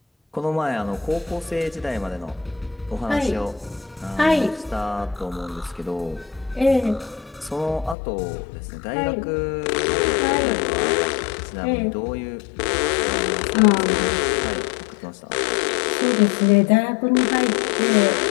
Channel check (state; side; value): drops out; right; at 8.0 s